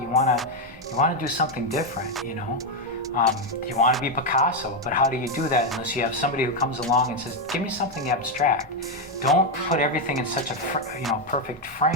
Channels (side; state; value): both; normal; correlation 0.05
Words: you wanna do something different, you know. You want to be Picasso, but how do you do that unless you have somebody who comes along and says, give me something abstract. Don't put everything in such a perfect